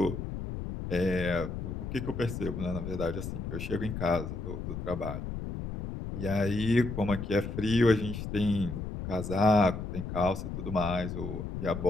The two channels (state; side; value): noise; left; rumble, 6 dB below the sound